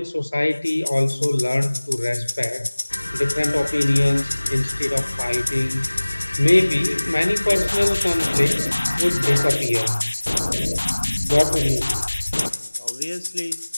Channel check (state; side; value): inverted; both; correlation -1.00